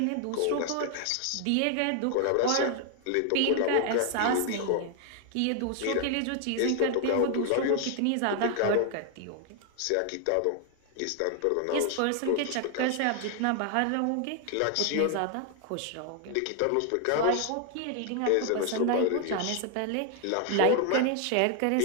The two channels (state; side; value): different; both; correlation 0.00